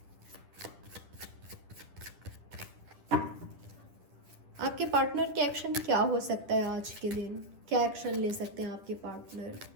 आपके पार्टनर के एक्शन क्या हो सकता है आज के दिन, क्या एक्शन ले सकते हैं आपके पार्टनर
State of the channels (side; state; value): left; late; 10 ms